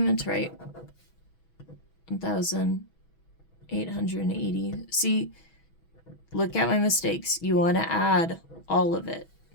to write 1,880. See, look at my mistakes. You want to add all of it,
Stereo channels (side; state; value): right; late; 6.1 ms